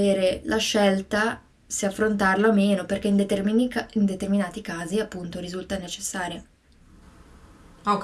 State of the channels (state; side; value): identical; both; correlation 1.00